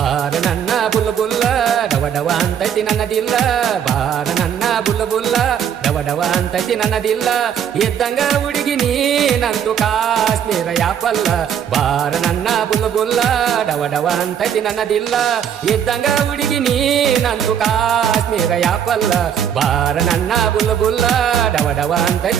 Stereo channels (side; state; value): left; quieter; 8.7 dB